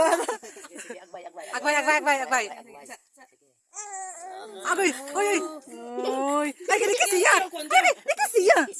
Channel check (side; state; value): both; identical; correlation 1.00